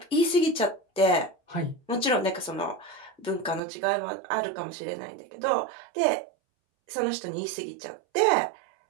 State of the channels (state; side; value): drops out; left; at 3.6 s